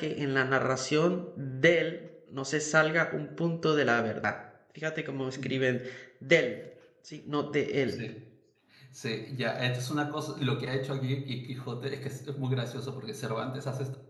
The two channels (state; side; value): identical; both; correlation 1.00